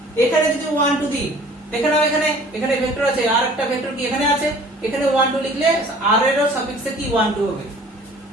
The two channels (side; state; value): both; normal; correlation 0.50